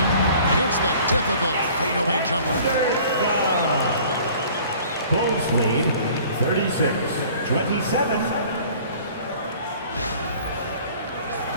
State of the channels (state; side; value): inverted; both; correlation -0.50